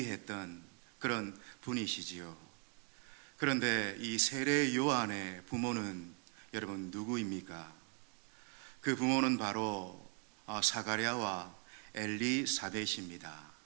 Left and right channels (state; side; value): quieter; left; 35.7 dB